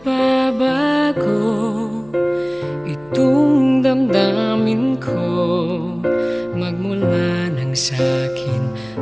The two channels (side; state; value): left; noise; hum, 26 dB below the sound